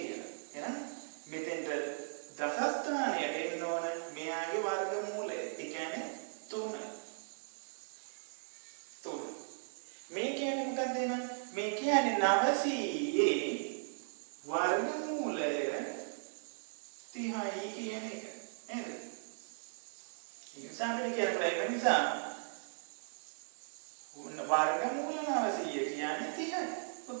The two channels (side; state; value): left; silent; digital silence